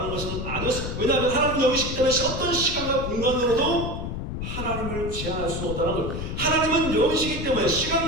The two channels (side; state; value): left; noise; rumble, 5 dB below the sound